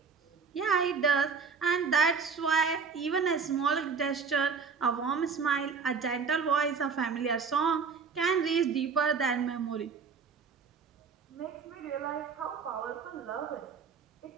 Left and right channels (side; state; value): left; quieter; 5.5 dB